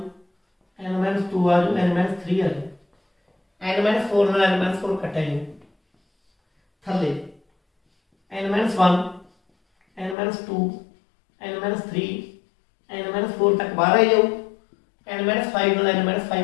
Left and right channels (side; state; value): right; drops out; at 10.2 s